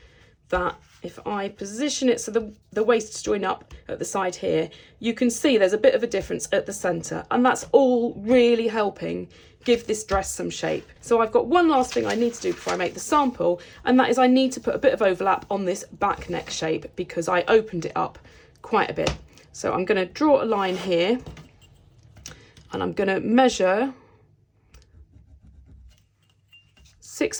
that if I position it so the waists join up at the side here, you can see there's a bit of a difference at the centre, and that's all really helping give this dress some shape. So I've got one last thing I need to do before I make the sample, and that is I need to put a bit of overlap on this back neck shape because I opened it up quite a bit. So I'm going to draw a line here, and I'm going to measure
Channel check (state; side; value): identical; both; correlation 1.00